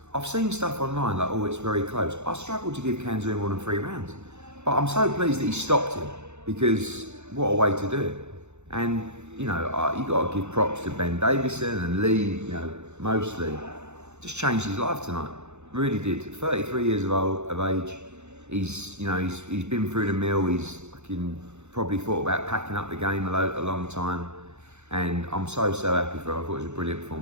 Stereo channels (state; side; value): late; left; 0.82 ms